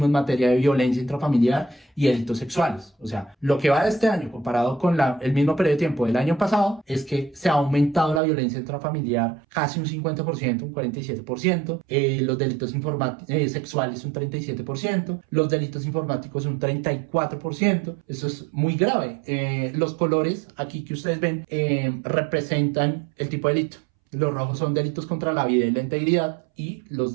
en materia de violencia intrafamiliar y delitos sexuales. O sea, lo que va de este año comparado con el mismo periodo de tiempo del año pasado es que se ha aumentado la violencia intrafamiliar casi un 50%, un 47%, los delitos sexuales un 37%, los delitos informáticos un 34%. Eso es muy grave. Los colores aquí que ustedes ven representan el tipo de delito. Los rojos son delitos contra la vida y la integridad y los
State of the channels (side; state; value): left; drops out; at 8.2 s